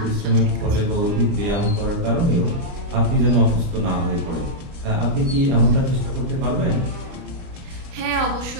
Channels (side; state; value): left; late; 30 ms